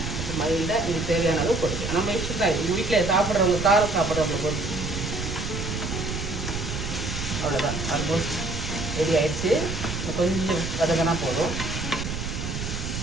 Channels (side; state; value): right; noise; rumble, 5 dB below the sound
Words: மைல்டாக இது தேவையான அளவு போடுங்க. நம்ம இஷ்டம் தான். இது வீட்டில் சாப்பிட்றவங்க, காரம் சாப்பிட்றவங்க பொறுத்து. அவ்வளோதான், ஆல்மோஸ்ட் ரெடி ஆயிடுச்சு. கொஞ்சம் வதங்கினா போதும்.